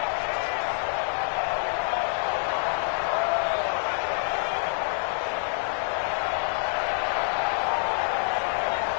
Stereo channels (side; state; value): right; silent; digital silence